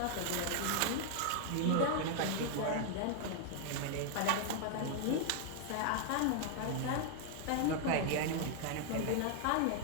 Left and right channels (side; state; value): both; different; correlation 0.00